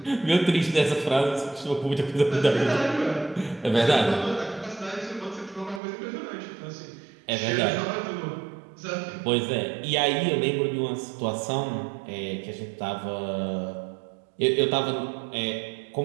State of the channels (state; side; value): drops out; left; at 5.8 s